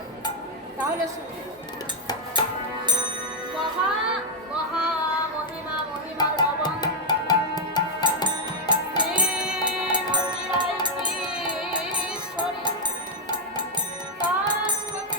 তাহলে শুনবে। মহা মহা মহিমা মহিমার লবণ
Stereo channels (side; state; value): both; normal; correlation 0.01